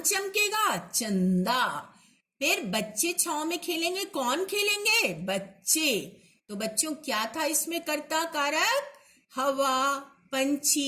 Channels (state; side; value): identical; both; correlation 1.00